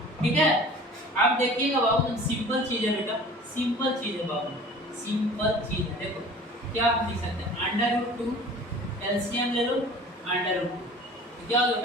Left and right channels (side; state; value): both; normal; correlation 0.44